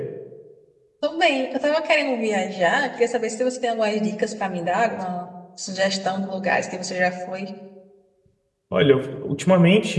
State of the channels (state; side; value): identical; both; correlation 1.00